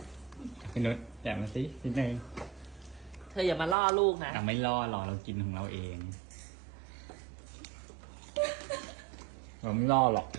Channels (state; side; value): drops out; left; at 3.8 s